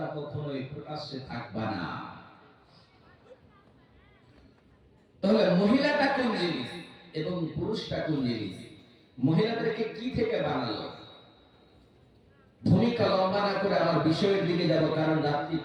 কখনোই প্রকাশ্যে থাকবা না। তাহলে মহিলাটা কোন জিনিস এবং পুরুষটা কোন জিনিস? মহিলাদেরকে কি থেকে বানালো? ভূমিকা লম্বা না করে আমার বিষয়ের দিকে যাব, কারণ রাত্রি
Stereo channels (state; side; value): identical; both; correlation 1.00